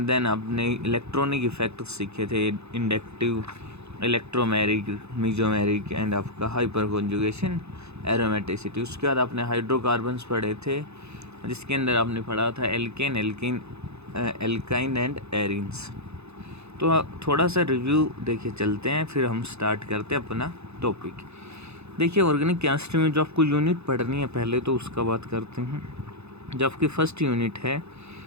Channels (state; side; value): late; left; 0.80 ms